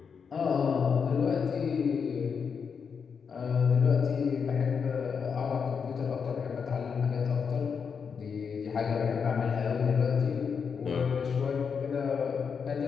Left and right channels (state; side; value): quieter; right; 6.2 dB